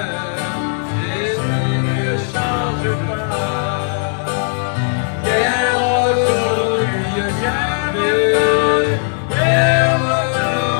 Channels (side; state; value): right; silent; 64 dB below the other